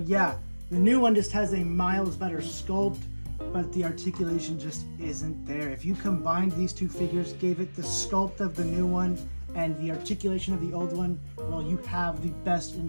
the new one just has a miles better sculpt, but the articulation just isn't there. If you combined these two figures, gave it the sculpt of the new one and the articulation of the old one, well, you have the best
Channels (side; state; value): both; inverted; correlation -1.00